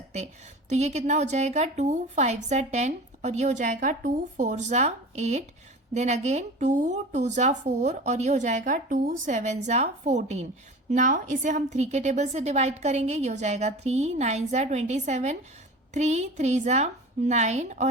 तो ये कितना हो जाएगा 2 5 जा 10 और ये हो जाएगा 2 4 जा 8, देन अगेन 2 2 जा 4 और ये हो जाएगा 2 7 जा 14। नाउ इसे हम 3 के टेबल से डिवाइड करेंगे, ये हो जाएगा 3 9 जा 27, 3 3 जा 9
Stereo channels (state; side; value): normal; both; correlation 0.36